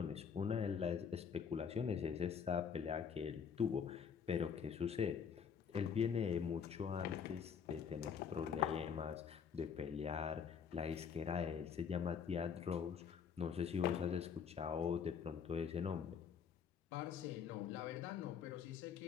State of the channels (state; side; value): quieter; right; 6.9 dB